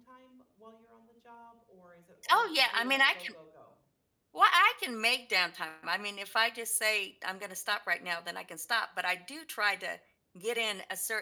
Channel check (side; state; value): both; identical; correlation 1.00